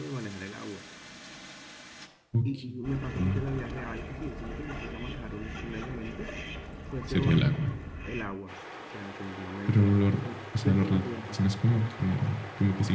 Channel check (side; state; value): both; identical; correlation 1.00